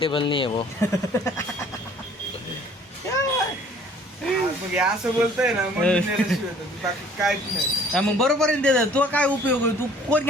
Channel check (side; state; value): both; normal; correlation 0.54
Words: नहीं है वो. मग हे असं बोलतोय ना मग मी नेल्याशिवाय तर बाकी काहीच नाही. हा, मग बरोबर आहे ना. तुला काय उपयोग आहे. तू कोण